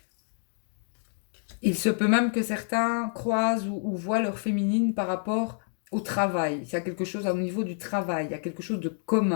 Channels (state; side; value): silent; right; digital silence